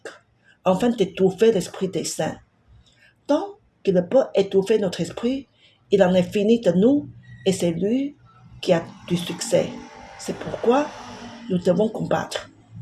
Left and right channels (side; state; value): both; identical; correlation 1.00